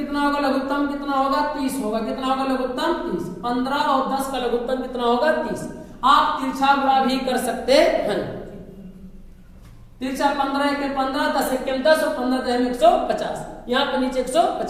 होगा लघुत्तम कितना होगा 30 होगा, कितना होगा लघुत्तम 30, 15 और 10 का लघुत्तम कितना होगा 30। आप तिरछा गुणा भी कर सकते हैं, तिरछा 15 × 15 10 × 10 और 15 × 150, यहाँ पे नीचे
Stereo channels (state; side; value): identical; both; correlation 1.00